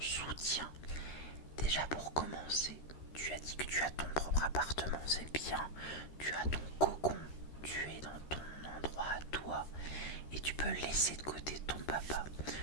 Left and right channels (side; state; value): right; late; 13 ms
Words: Déjà pour commencer, tu as dit que tu as ton propre appartement, c'est bien. Tu as ton cocon, tu es dans ton endroit à toi et tu peux laisser de côté ton papa.